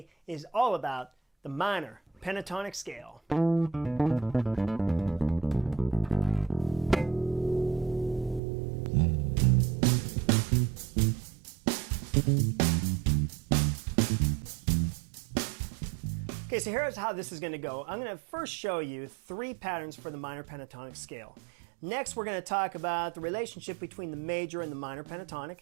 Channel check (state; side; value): drops out; left; at 8.4 s